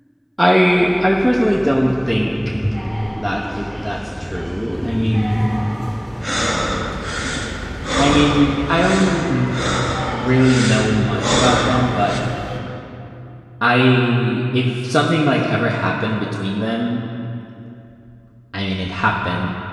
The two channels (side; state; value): both; identical; correlation 1.00